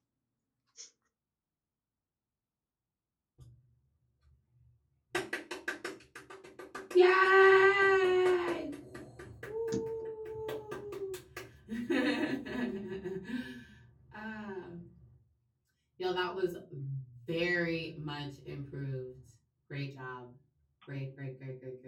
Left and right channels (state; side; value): identical; both; correlation 1.00